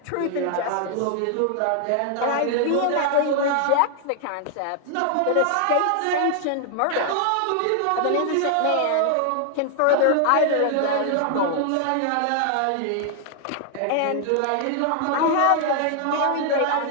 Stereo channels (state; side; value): different; both; correlation 0.00